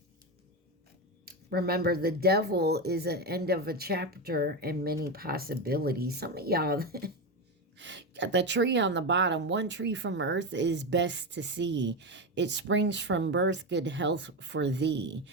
Remember, the devil is an end of a chapter and many possibilities. Some of y'all got the tree on the bottom. One tree from earth is best to see. It springs from birth, good health for thee.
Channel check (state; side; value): normal; both; correlation 0.14